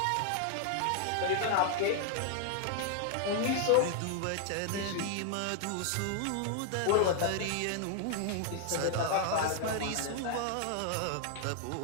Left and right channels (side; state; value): both; different; correlation 0.00